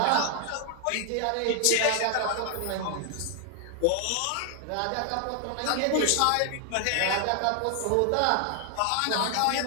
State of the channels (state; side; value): different; both; correlation 0.00